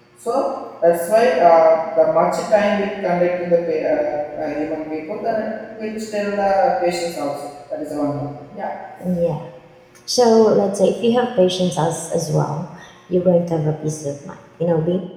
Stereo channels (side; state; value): both; identical; correlation 1.00